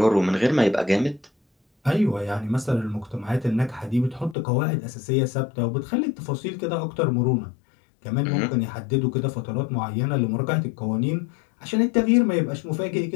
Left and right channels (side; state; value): right; drops out; at 4.4 s